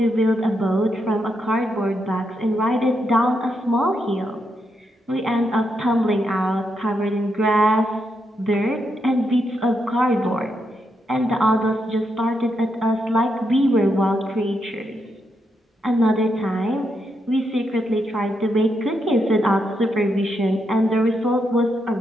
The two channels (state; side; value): normal; both; correlation 0.82